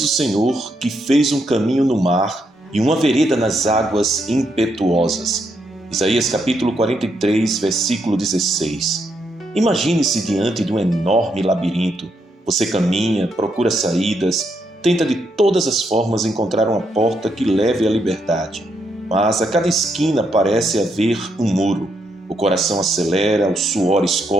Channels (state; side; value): normal; both; correlation 0.78